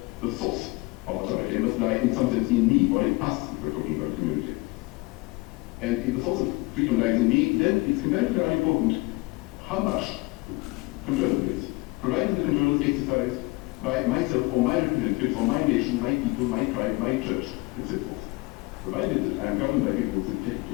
the source of authority must lie in some sense in me, or in us, if we're talking about a community. And if the source of freedom lies in me, then it's comparatively unimportant how much control there is, provided the control is exercised by myself or my representatives or my nation, my people, my tribe, my church, and so forth. Provided that I'm governed by people who are sympathetic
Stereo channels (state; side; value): quieter; right; 23.9 dB